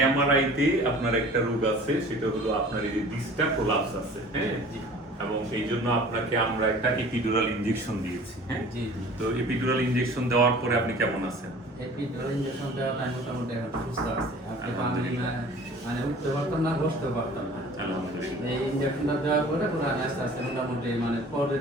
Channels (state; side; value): normal; both; correlation 0.46